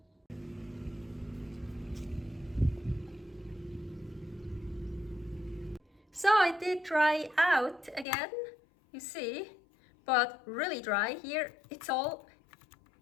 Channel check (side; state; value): right; drops out; at 8.1 s